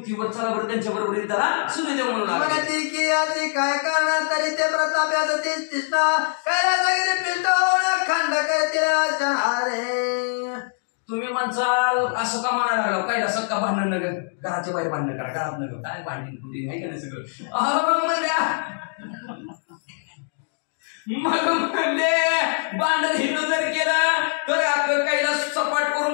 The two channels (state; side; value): silent; right; digital silence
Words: चला बरं त्यांच्या बरोबर त्याला सूर्यदेव म्हणू लागले. काय करणार तरी ते प्रताप्याचं तेच कृष्ण कैलासगिरी पिंटवून खंड करतील अरे. तुम्ही म्हणसाल असं का म्हणायला लागला कैलासात का भांडण नगर घराच्या बाहेर भांडण करा घरात नगर काय भांडण कुठे नाही का सगळं अहो म्हणल्या मग म्हणले भांडण हिथं जर केलं तर आता कैलास सपाट